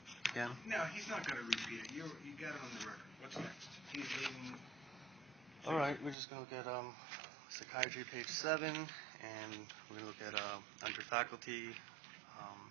again? No, he's not going to repeat it. You got it on the record. What's next? He's leaving. All right, we're just going to look at Psychiatry, page 7, and we're going to look at under faculty,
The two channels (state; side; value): drops out; left; at 6.2 s